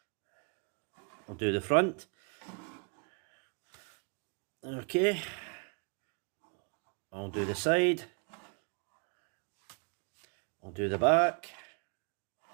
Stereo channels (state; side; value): quieter; left; 36.2 dB